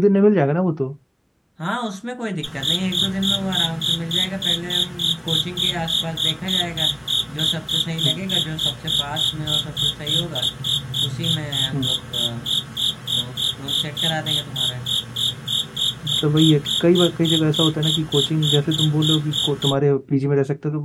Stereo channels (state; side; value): identical; both; correlation 1.00